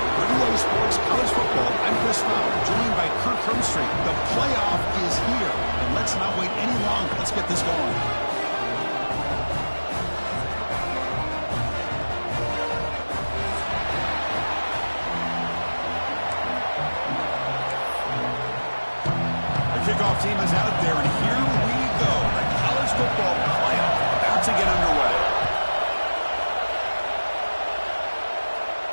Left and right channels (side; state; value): both; inverted; correlation -1.00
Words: For EA Sports College Football, I'm Chris Fowler, joined by Kirk Hermstreet. The playoff is here, and let's not wait any longer. Let's get this going. Kickoff team is out there, and here we go. The college football playoff about to get underway.